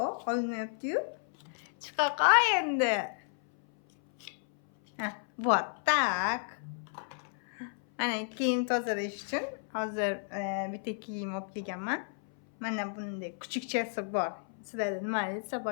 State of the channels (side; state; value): right; silent; 56 dB below the other